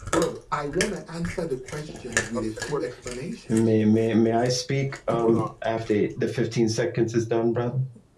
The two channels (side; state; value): both; identical; correlation 1.00